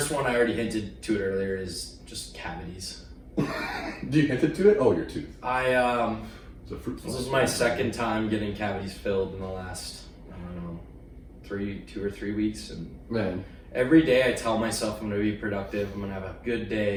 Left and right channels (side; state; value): both; identical; correlation 1.00